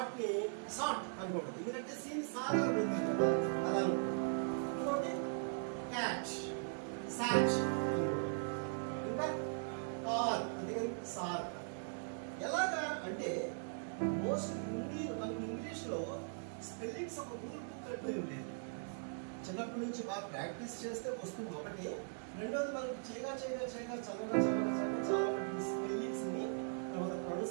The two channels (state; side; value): silent; left; digital silence